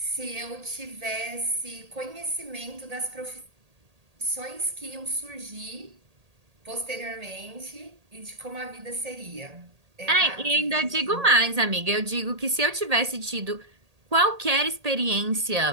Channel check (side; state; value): left; late; 1.8 ms